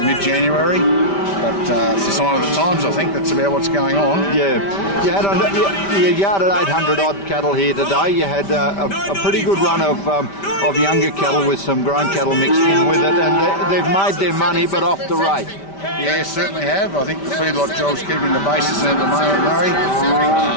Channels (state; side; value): late; right; 5.1 ms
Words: But it's a sign of the times, I think. That's about what's going on. Yeah. You yarded 800 odd cattle here today. You had a pretty good run of younger cattle with some grown cattle mixed in with it, and they've made their money, but off the rate. Yeah, certainly have. I think the feedlot job's keeping the bases in at the moment, Murray.